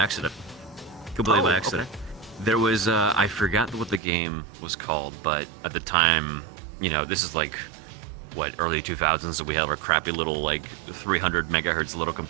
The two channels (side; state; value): left; drops out; at 4.0 s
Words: Completely by Oh, accident. There was I forgot what the game was called, but at the time, this is like early 2000s, so we had our crappy little like 300 megahertz little